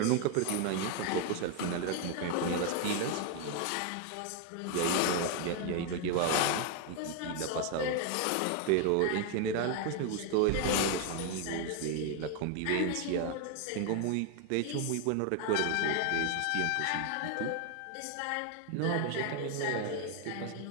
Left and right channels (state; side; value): different; both; correlation 0.01